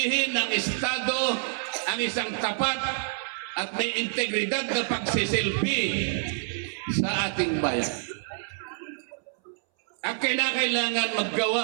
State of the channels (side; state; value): left; silent; 60 dB below the other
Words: ng Estado ang isang tapat at may integridad na pagsisilbi sa ating bayan. At kailangan